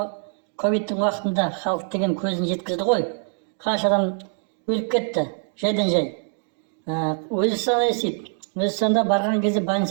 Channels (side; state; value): left; silent; 63 dB below the other